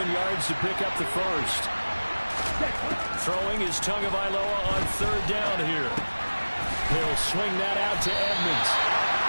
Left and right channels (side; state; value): both; inverted; correlation -1.00